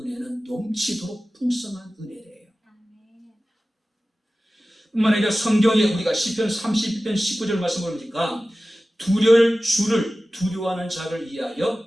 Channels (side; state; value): both; normal; correlation 0.96